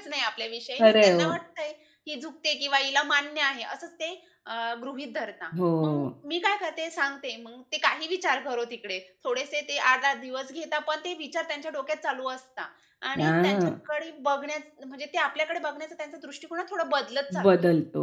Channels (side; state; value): both; identical; correlation 1.00